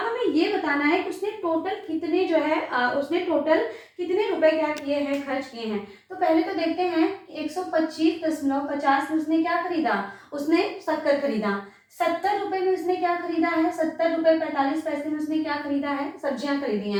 हमें ये बताना है कि उसने टोटल कितने जो है उसने टोटल कितने रुपए क्या किए हैं, खर्च किए हैं। तो पहले तो देखते हैं 125.50 में उसने क्या खरीदा, उसने शक्कर खरीदा। 70 रुपए में उसने क्या खरीदा है, 70 रुपए 45 पैसे में उसने क्या खरीदा है, सब्जियां खरीदी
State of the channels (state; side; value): identical; both; correlation 1.00